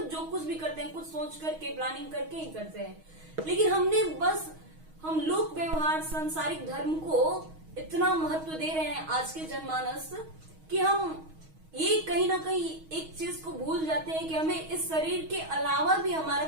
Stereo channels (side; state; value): left; late; 6.3 ms